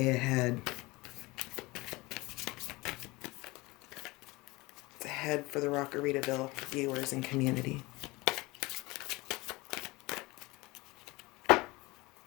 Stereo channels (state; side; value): quieter; right; 22.7 dB